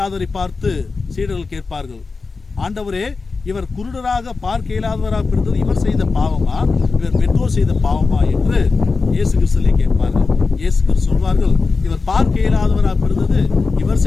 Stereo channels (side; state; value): right; quieter; 4.3 dB